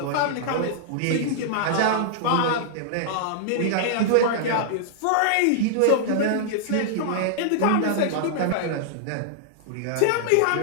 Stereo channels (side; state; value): both; different; correlation -0.01